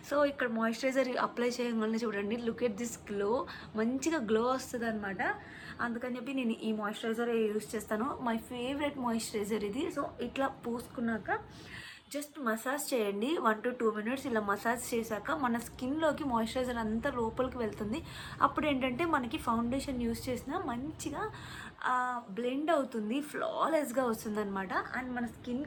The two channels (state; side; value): identical; both; correlation 1.00